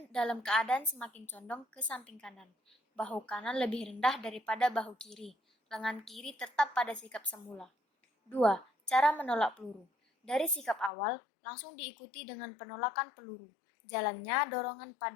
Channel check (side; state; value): right; drops out; at 10.9 s